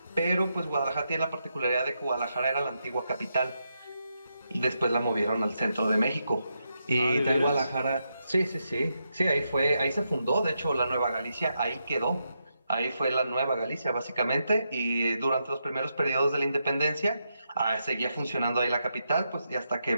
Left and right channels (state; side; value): inverted; both; correlation -0.83